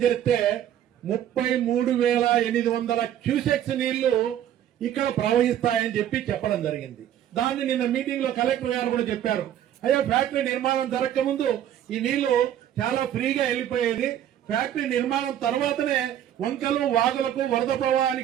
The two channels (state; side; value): quieter; left; 10.9 dB